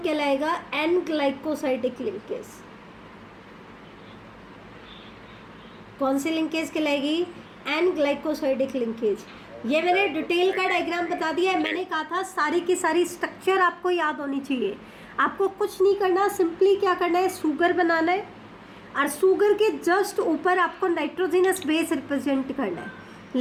कहलाएगा एन ग्लाइकोसाइडिक लिंकेज। कौन सी लिंकेज कहलाएगी, एन ग्लाइकोसाइडिक लिंकेज। ये मैंने डिटेल का डायग्राम बता दिया है। मैंने कहा था सारी की सारी स्ट्रक्चर आपको याद होनी चाहिए। आपको कुछ नहीं करना, सिंपली क्या करना है, शुगर बनाना है और शुगर के जस्ट ऊपर आपको नाइट्रोजिनस बेस रिप्रेजेंट करना है।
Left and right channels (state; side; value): identical; both; correlation 1.00